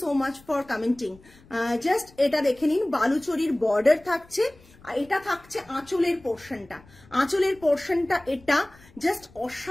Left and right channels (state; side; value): noise; left; rumble, 26 dB below the sound